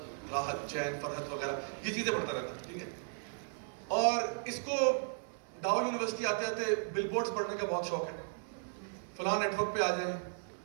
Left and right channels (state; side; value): silent; left; 54 dB below the other